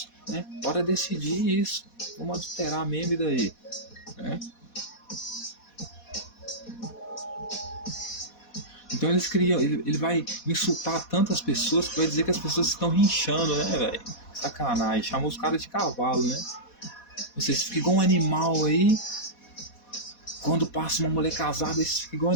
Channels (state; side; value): late; right; 4.2 ms